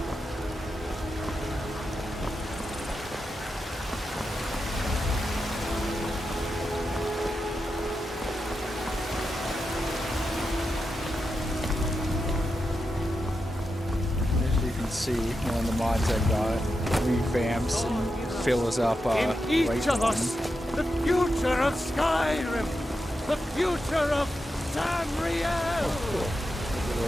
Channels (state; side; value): normal; both; correlation 0.88